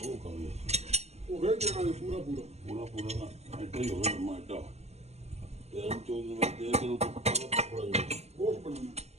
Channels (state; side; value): late; left; 0.31 ms